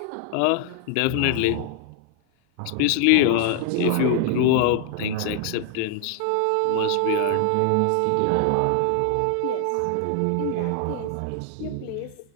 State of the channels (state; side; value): different; both; correlation 0.00